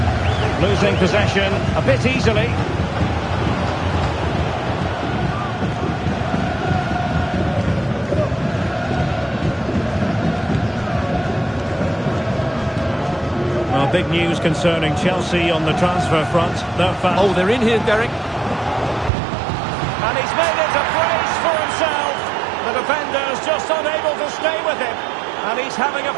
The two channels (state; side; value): drops out; left; at 19.1 s